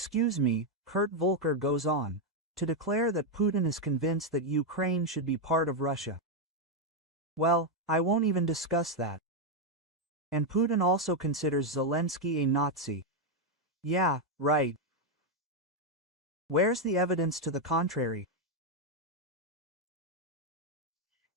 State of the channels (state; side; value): normal; both; correlation 0.02